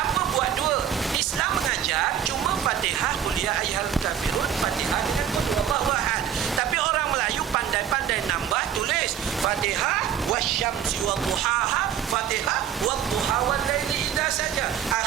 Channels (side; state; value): left; quieter; 9.2 dB